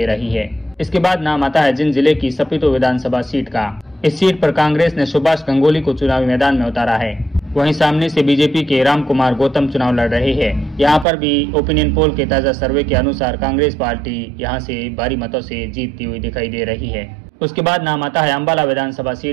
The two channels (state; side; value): drops out; left; at 11.1 s